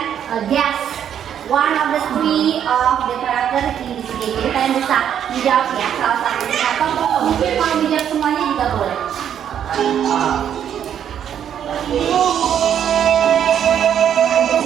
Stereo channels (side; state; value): left; quieter; 9.3 dB